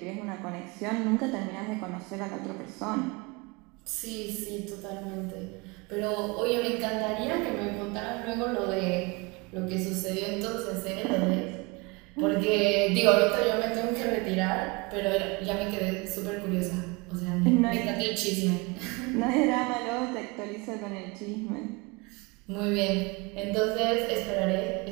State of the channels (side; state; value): left; quieter; 26.5 dB